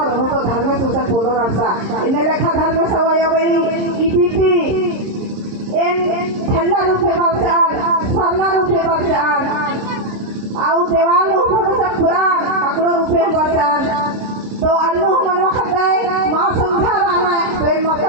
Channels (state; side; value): late; left; 26 ms